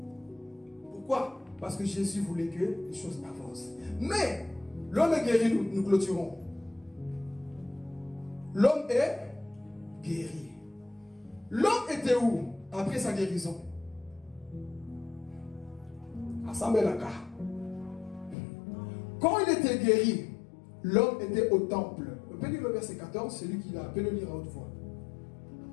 Pourquoi? Parce que Jésus voulait que les choses avancent. Mais, l'homme est guéri, nous clôturons. L'homme est guéri. L'homme était où après sa guérison? À Samelaka. Quand il était guéri, l'homme était au temple. On peut lire le verset 14, celui qui l'a, peut le lire à haute voix.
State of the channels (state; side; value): drops out; right; at 18.4 s